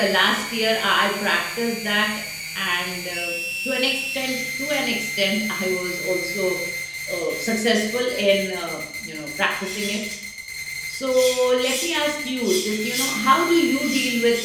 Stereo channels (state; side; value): identical; both; correlation 1.00